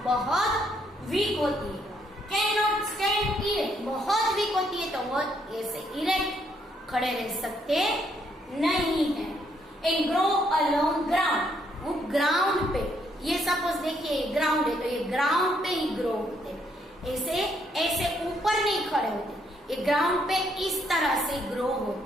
बहुत वीक होती है। कैन नॉट स्टैंड इरेक्ट, बहुत वीक होती है तो वो ऐसे इरेक्ट खड़े रह सकते नहीं है। And grow along ground, ground पे, ये सपोज देखिए ग्राउंड है तो ये ग्राउंड पे ही ग्रो होते, ऐसे ऐसे ऊपर नहीं खड़े होते, ये ग्राउंड पे इस तरह से ग्रो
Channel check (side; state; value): both; normal; correlation 0.72